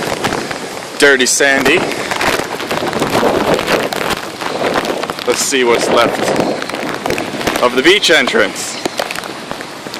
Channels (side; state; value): both; identical; correlation 1.00